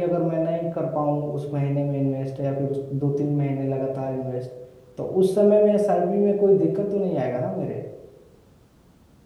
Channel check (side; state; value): both; identical; correlation 1.00